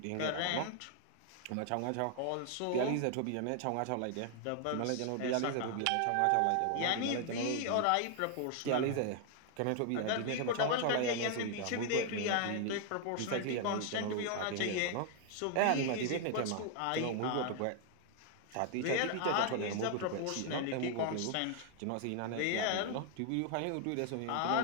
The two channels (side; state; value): both; different; correlation 0.00